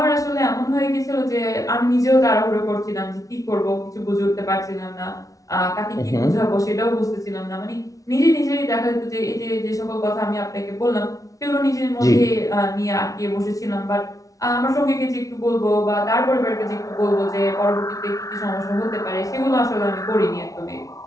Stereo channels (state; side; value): late; right; 0.17 ms